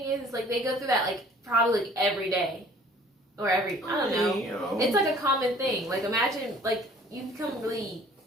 is, like they go through that like probably like, every day or I don't know. You know. It's like a common thing. Like imagine like you become really.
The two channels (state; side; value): normal; both; correlation 0.53